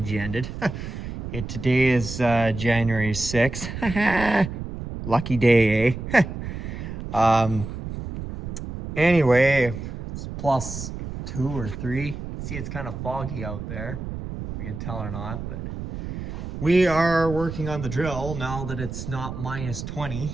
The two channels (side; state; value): right; noise; rumble, 8 dB below the sound